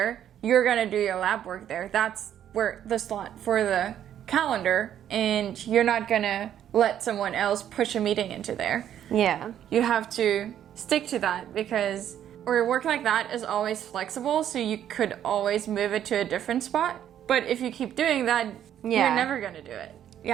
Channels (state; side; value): quieter; left; 10.4 dB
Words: you're going to do your lab work there. That's where the slot for the calendar, and you're not going to let someone else push a meeting into there. Yeah. You have to stick to that, because or work like that is always flexible, so you could always move it to a different spot. But if you keep doing that, you're never going to do it.